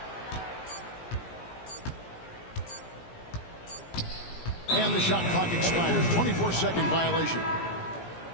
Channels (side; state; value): right; late; 17 ms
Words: And the shot clock expires. 24-second violation.